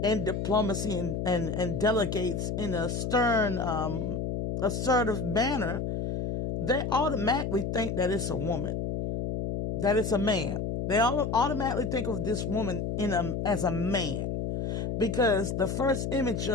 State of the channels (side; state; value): left; noise; hum, 2 dB below the sound